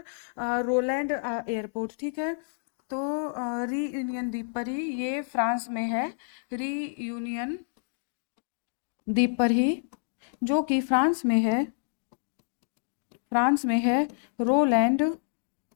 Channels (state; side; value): silent; right; digital silence